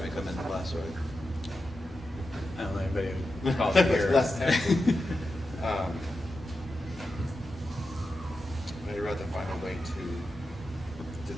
practice. come in last, right? I don't know anybody who calls it here. Less taxes. I'd rather find a way to do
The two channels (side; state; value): both; normal; correlation 0.90